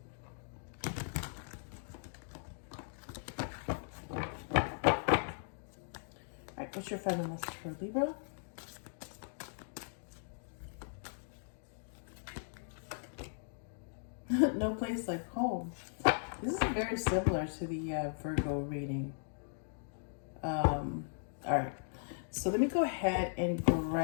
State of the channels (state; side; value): silent; right; digital silence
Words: What's your final message for Libra? No place like home. This is very similar to the Virgo reading. All right. So let me go ahead and